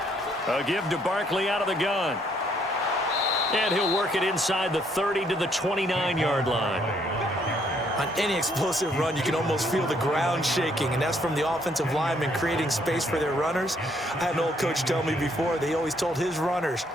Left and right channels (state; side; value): normal; both; correlation 0.68